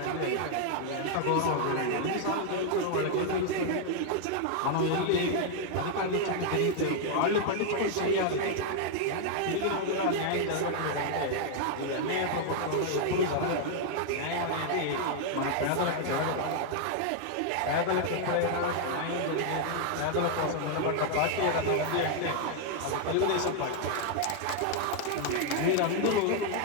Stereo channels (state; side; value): different; both; correlation 0.00